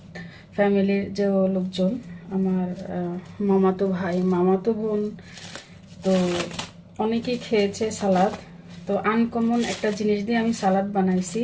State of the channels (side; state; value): both; identical; correlation 1.00